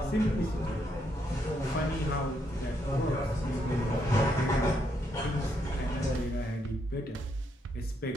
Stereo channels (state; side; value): normal; both; correlation 0.76